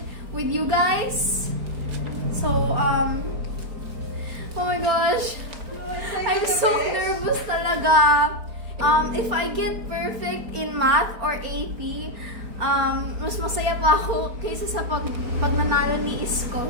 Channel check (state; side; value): late; left; 4.3 ms